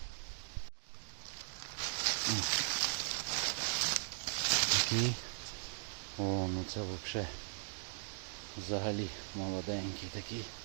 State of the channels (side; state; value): left; silent; digital silence